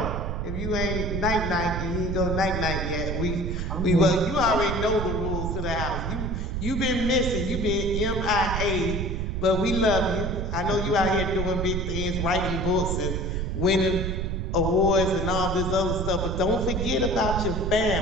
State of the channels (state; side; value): noise; right; rumble, 2 dB below the sound